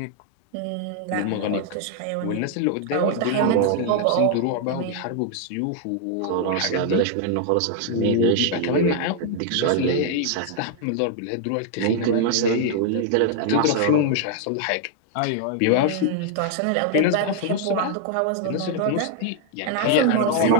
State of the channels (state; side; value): different; both; correlation 0.00